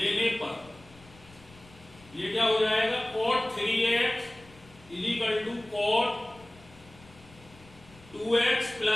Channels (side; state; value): left; noise; rumble, 24 dB below the sound